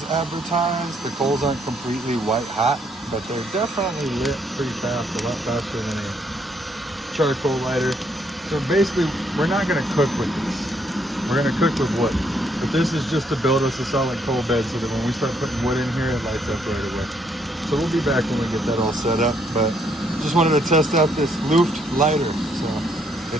advertised. The coals aren't completely white hot, but they're definitely lit pretty fast, a lot faster than a charcoal lighter. So basically, we're not gonna cook with this. We're gonna cook with wood. But this is just to build us a solid coal bed so that when we start putting wood in here, it lights up right away. So we'll be back when we get that all set up, but just wanted to test out this Looft Lighter. So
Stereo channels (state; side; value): normal; both; correlation 0.70